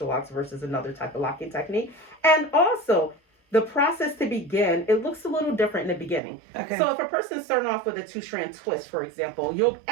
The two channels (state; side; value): drops out; left; at 6.2 s